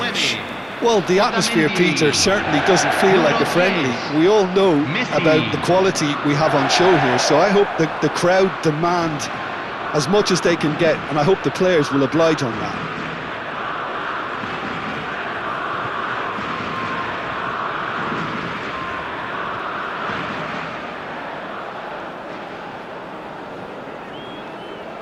Well, the atmosphere, Peter, certainly doesn't feel like a friendly. We all know about the quality we have on show here, so I hope that the crowd demand as much as they can get, and I hope the players will oblige on that.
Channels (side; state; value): both; identical; correlation 1.00